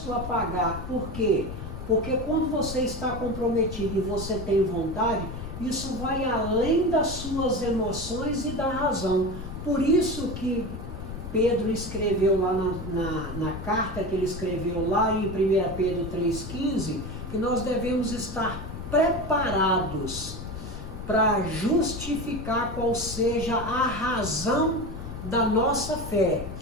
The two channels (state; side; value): noise; left; rumble, 9 dB below the sound